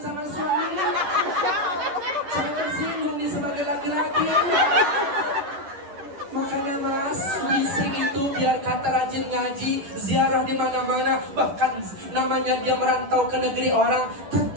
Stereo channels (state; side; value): late; left; 10 ms